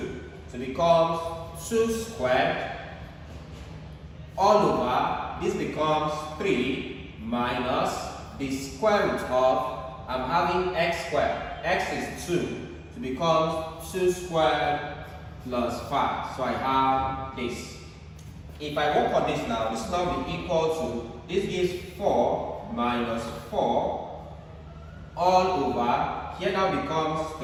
So it becomes 2 squared all over, this becomes 3 minus the square root of, I'm having x squared. X is 2. So it becomes 2 squared plus 5. So I have this. If I work on this now, this now will be equal to, this gives 4 minus 4 all over, here now becomes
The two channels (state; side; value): identical; both; correlation 1.00